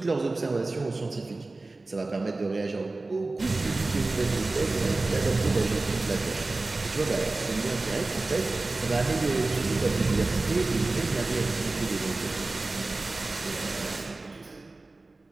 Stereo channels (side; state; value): left; quieter; 3.2 dB